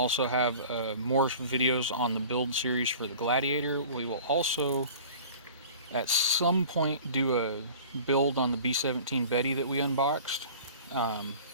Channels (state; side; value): inverted; both; correlation -0.43